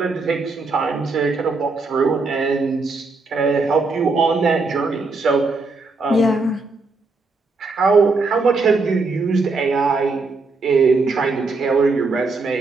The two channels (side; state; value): left; quieter; 3.8 dB